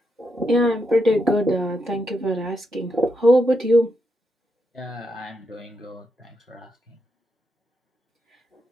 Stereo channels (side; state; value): both; normal; correlation 0.82